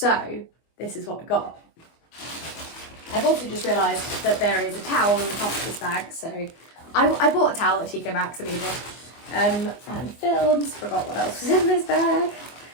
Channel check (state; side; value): late; right; 24 ms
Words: this is what I got. I've also just realised that there is a towel in the top of this bag. So I bought a towel at TK Maxx and Lidl. And films, forgot what else was in this bag.